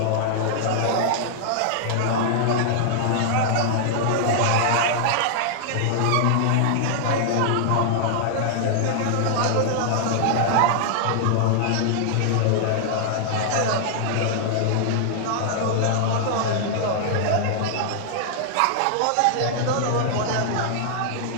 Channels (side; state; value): both; different; correlation -0.01